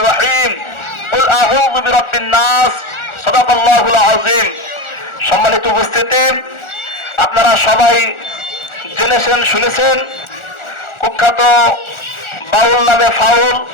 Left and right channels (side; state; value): right; late; 1.4 ms